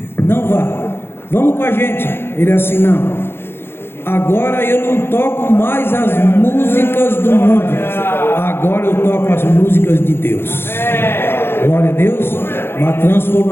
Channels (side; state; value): right; late; 0.11 ms